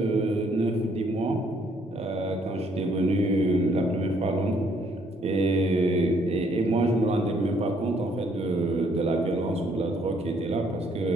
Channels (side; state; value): both; normal; correlation 0.67